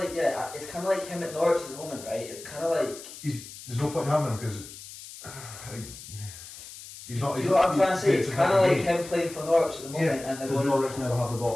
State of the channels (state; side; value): noise; left; hiss, 15 dB below the sound